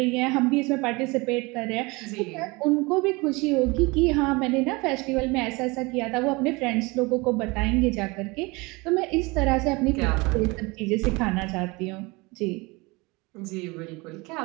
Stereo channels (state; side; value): quieter; left; 25.2 dB